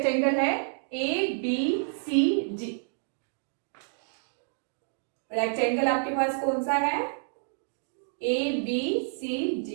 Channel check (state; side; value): silent; left; digital silence